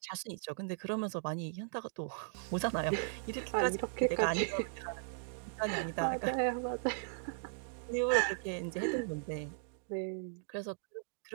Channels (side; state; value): left; silent; digital silence